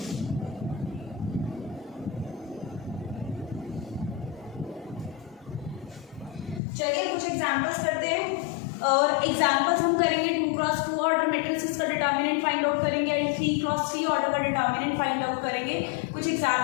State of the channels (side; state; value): right; drops out; at 6.6 s